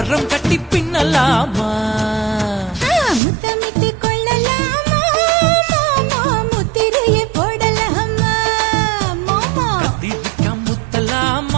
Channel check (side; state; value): left; drops out; at 3.2 s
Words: கட்டி பின்னலாமா. முத்தமிட்டு கொள்ளலாமா மாமா, முத்திரைய போடலாமா மாமா. கத்திரிக்கா